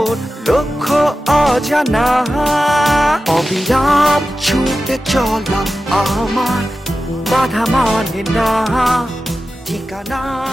লক্ষ্য অজানা অবিরাম ছুটে চলা আমার বাধা মানে না ঠিকানা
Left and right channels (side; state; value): both; normal; correlation 0.93